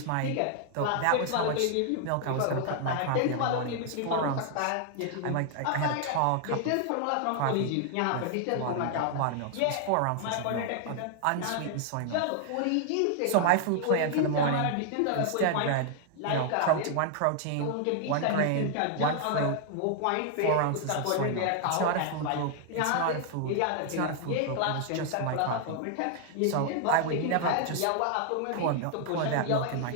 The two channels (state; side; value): different; both; correlation 0.00